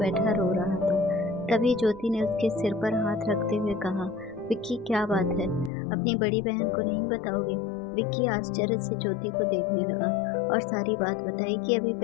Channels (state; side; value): drops out; right; at 5.7 s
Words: रो रहा था। तभी ज्योति ने उसके सिर पर हाथ रखते हुए कहा, विक्की क्या बात है, अपनी बड़ी बहन को नहीं बताओगे। विक्की आश्चर्य से ज्योति को देखने लगा और सारी बात बताई कि अभी